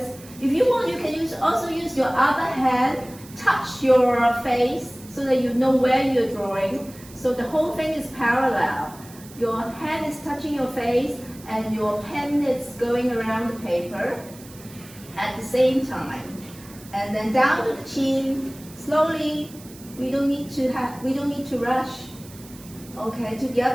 If you want, you can also use your other hand, touch your face so that you know where you're drawing. So the whole thing is parallel. Your hand is touching your face and your pen is going around the paper at the same time. And then down to the chin, slowly. We don't need to rush. Okay, to the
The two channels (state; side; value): noise; right; hiss, 20 dB below the sound